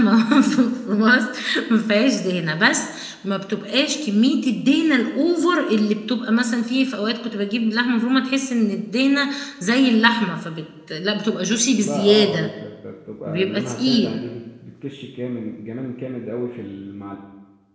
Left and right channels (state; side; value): identical; both; correlation 1.00